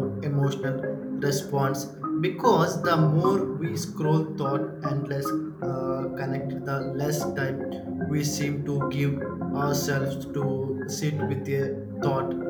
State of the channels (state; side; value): identical; both; correlation 1.00